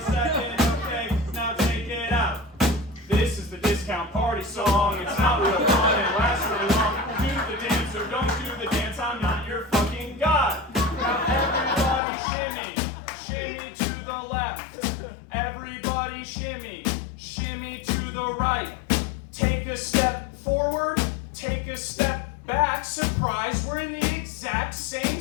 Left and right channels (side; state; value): right; drops out; at 12.0 s